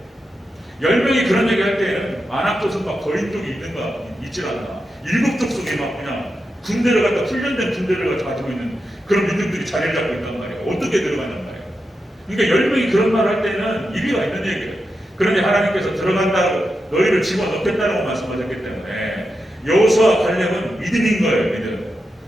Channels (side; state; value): both; normal; correlation 0.88